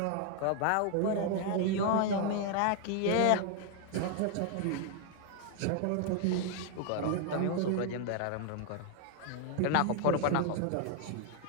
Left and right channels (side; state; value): both; different; correlation 0.00